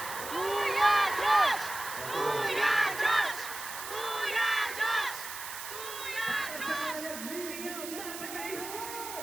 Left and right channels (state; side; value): noise; right; hiss, 9 dB below the sound